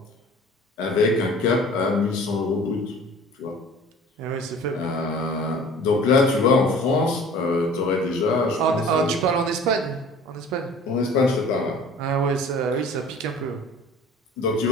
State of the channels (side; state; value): both; normal; correlation 0.46